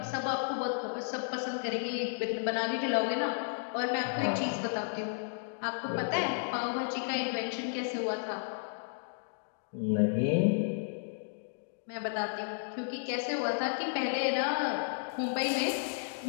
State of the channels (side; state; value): right; silent; digital silence